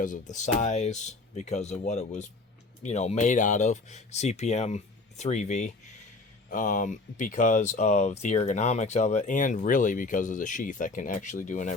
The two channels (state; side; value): quieter; right; 3.5 dB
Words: of the size, because of what it was, you know, made out of, CPM 3V, because of the ergonomics of it, and really because of the sheath. I can actually do an